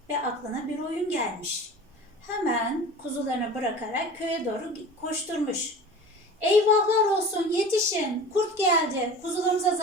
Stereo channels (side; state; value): both; normal; correlation 0.38